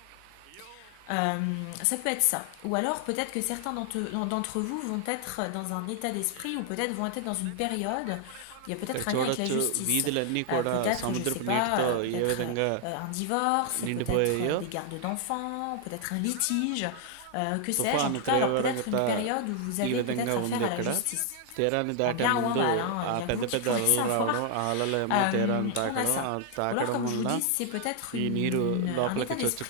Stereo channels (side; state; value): both; different; correlation 0.00